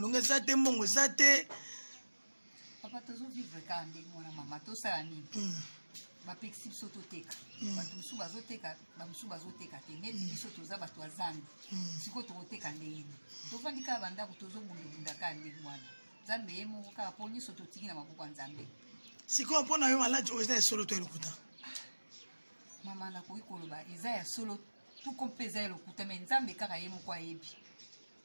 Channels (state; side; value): inverted; both; correlation -1.00